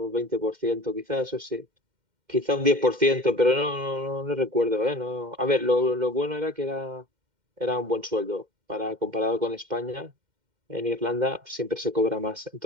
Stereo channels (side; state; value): left; late; 2.1 ms